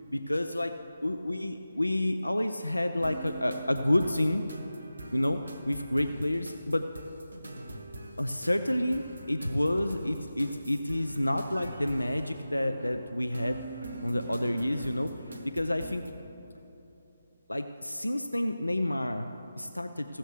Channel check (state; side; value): inverted; both; correlation -0.95